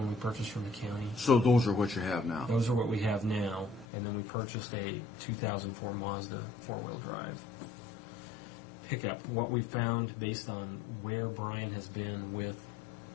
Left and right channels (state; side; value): drops out; right; at 3.9 s